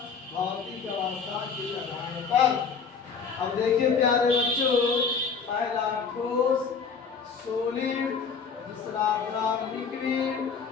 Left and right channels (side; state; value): right; quieter; 5.7 dB